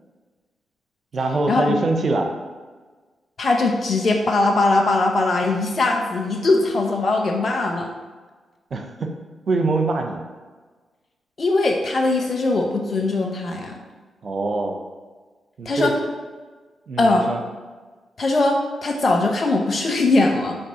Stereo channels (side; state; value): both; normal; correlation 0.83